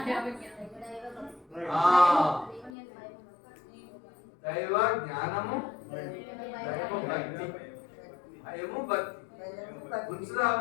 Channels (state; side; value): drops out; right; at 2.7 s